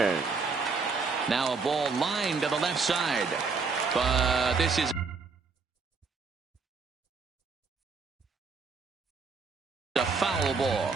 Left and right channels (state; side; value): quieter; left; 4.7 dB